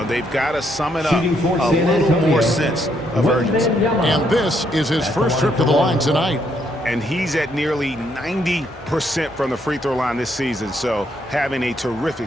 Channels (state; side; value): normal; both; correlation 0.73